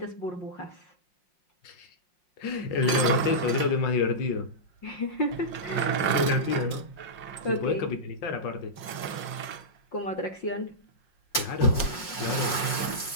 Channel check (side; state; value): right; late; 5.6 ms